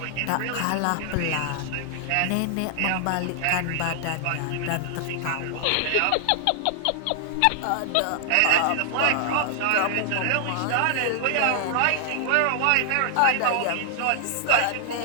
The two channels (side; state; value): both; different; correlation 0.00